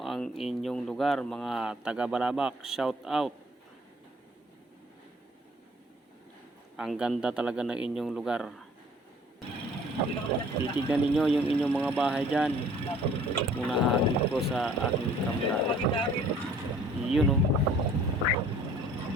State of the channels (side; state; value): both; normal; correlation 0.54